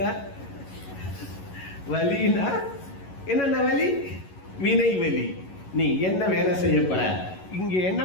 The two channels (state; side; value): late; right; 11 ms